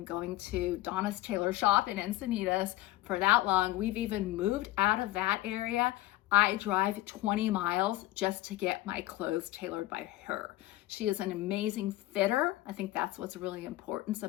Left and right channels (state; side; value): quieter; right; 16.4 dB